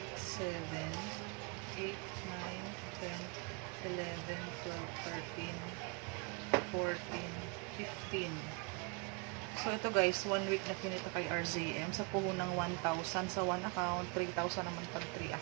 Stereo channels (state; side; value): quieter; left; 32.5 dB